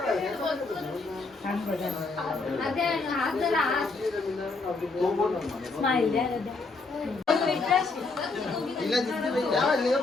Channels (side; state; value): right; quieter; 3.7 dB